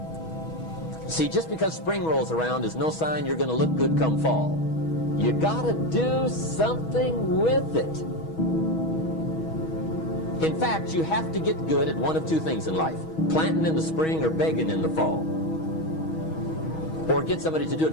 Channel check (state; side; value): late; right; 6.2 ms